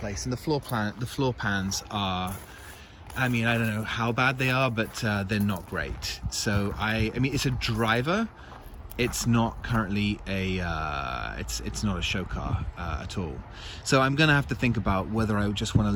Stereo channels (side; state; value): both; identical; correlation 1.00